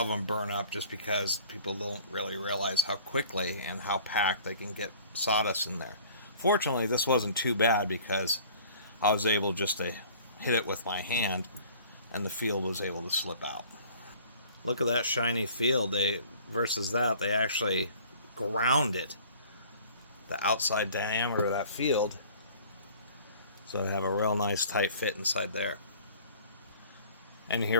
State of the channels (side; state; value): both; inverted; correlation -0.50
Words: of them burn up just because people don't really realize how quickly and how packed they can get sawdust in there. Fortunately, this wasn't too bad because I was able just to hit it with my hand and the field was able to slip out. Look at that shiny field. Versus that, they actually ground it, the outside diameter of that field, so I have a real nice tight fit inside there. And here